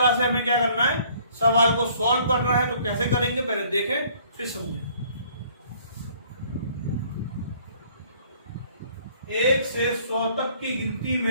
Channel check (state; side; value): inverted; both; correlation -0.58